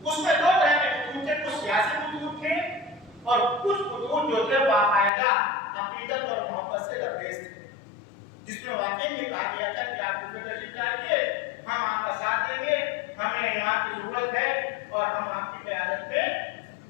उसमें 2 तरह के खुतूत थे, कुछ सियासी खुतूत थे और कुछ खुतूत जो थे बाकायदा अकीदत और मोहब्बत से लबरेज थे जिसमें वाकई में कहा गया था कि आप कूफे तशरीफ लाइए, हम आपका साथ देंगे, हमें इमाम की जरूरत है और हम आपकी क़यादत में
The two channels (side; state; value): right; drops out; at 5.1 s